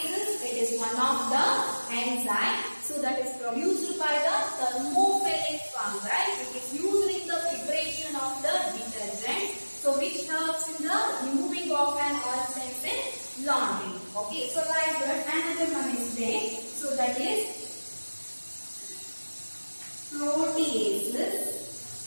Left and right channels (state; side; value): inverted; both; correlation -1.00